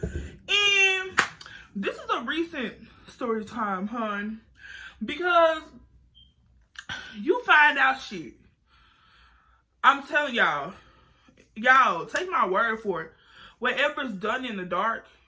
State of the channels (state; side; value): identical; both; correlation 1.00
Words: And this is a recent story time, hun. Because you find out shit. I'm telling y'all, take my word for it. Whatever's done in the dark